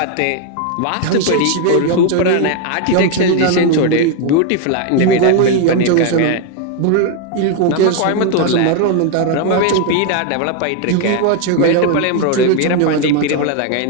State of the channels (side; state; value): both; different; correlation 0.01